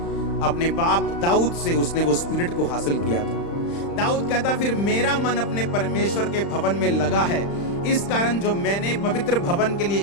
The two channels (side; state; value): right; late; 35 ms